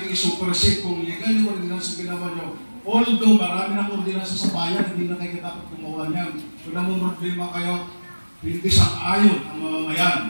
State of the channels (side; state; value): both; inverted; correlation -1.00